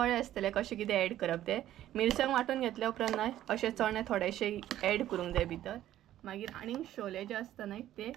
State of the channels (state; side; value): quieter; left; 12.9 dB